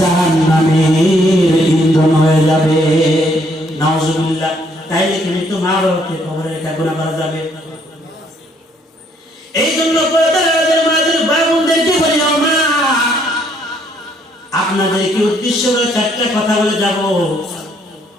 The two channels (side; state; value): both; normal; correlation 0.68